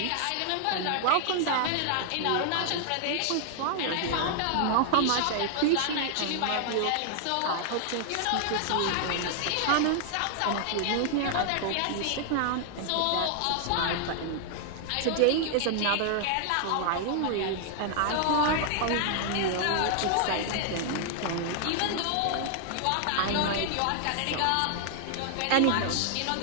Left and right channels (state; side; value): different; both; correlation 0.00